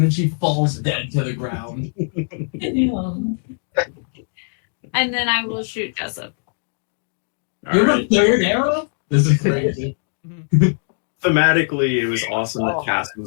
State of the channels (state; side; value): silent; right; digital silence